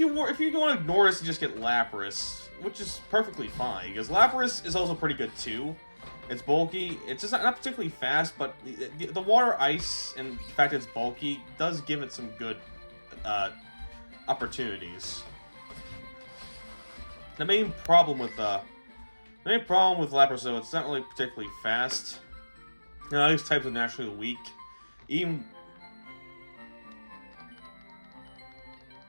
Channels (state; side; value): inverted; both; correlation -1.00